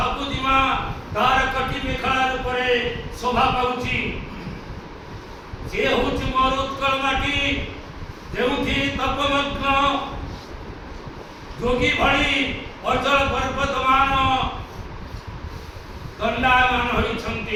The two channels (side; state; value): both; identical; correlation 1.00